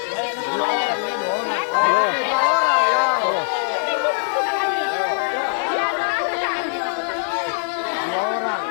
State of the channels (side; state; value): right; silent; 64 dB below the other